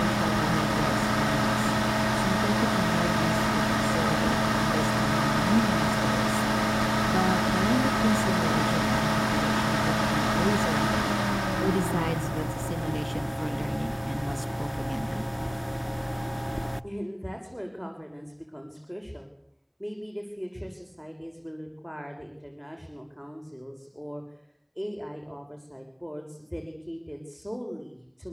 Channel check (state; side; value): identical; both; correlation 1.00